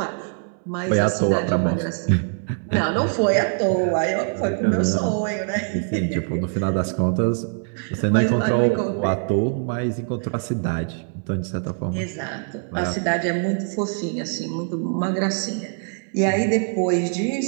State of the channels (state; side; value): silent; left; 56 dB below the other